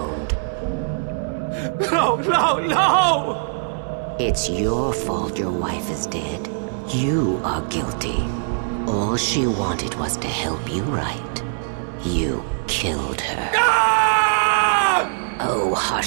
No, no, no! It's your fault your wife is dead. You are guilty. All she wanted was to help you right. You killed her. Ah! Oh,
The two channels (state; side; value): silent; left; 63 dB below the other